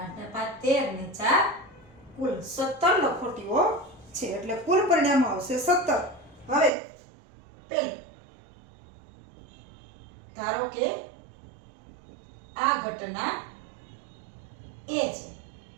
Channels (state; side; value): drops out; left; at 6.7 s